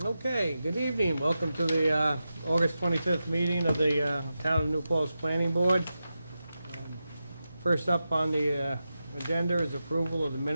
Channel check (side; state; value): both; inverted; correlation -0.91